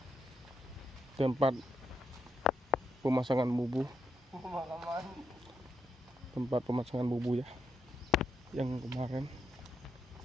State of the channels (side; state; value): both; normal; correlation 0.80